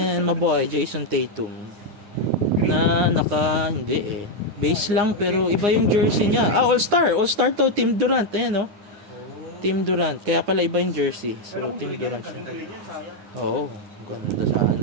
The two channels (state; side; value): late; left; 9.8 ms